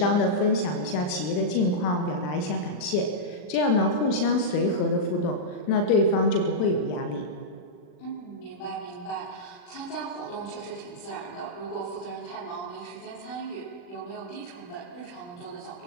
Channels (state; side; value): late; right; 40 ms